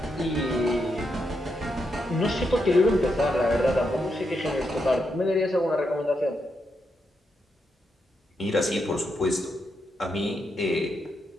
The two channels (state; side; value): normal; both; correlation 0.82